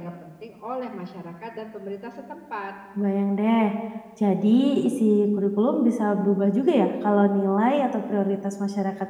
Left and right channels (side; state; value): both; identical; correlation 1.00